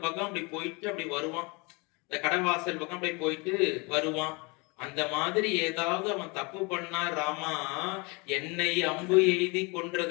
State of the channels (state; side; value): quieter; right; 28.9 dB